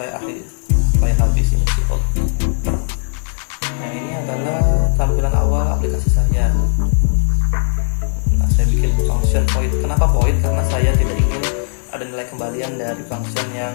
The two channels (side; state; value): right; silent; 61 dB below the other